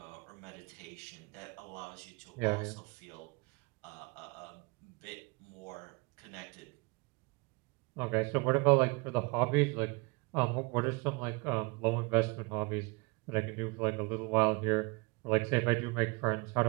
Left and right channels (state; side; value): quieter; left; 27.7 dB